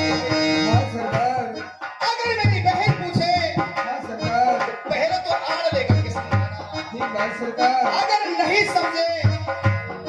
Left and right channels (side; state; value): both; identical; correlation 1.00